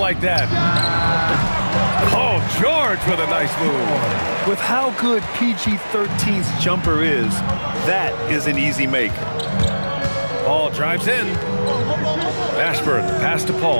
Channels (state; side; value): inverted; both; correlation -1.00